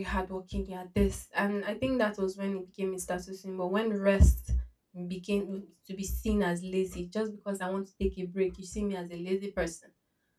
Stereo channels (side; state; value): both; identical; correlation 1.00